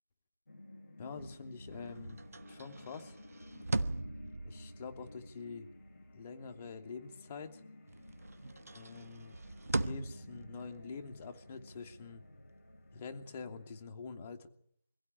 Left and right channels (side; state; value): both; inverted; correlation -0.87